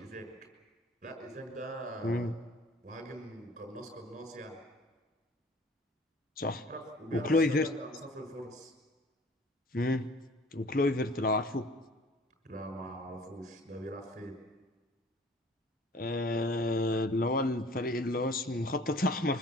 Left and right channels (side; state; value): both; normal; correlation 0.50